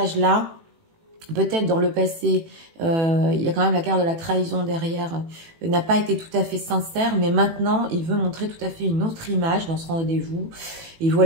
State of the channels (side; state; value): left; late; 18 ms